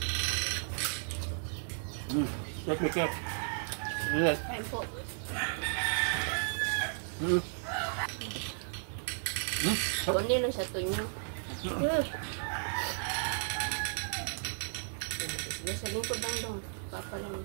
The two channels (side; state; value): left; silent; 55 dB below the other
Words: Cake, may cake. Yes. Kain po. Kunin lang sa tunyo. Sige, sa lingkod lang dong. Papa lang.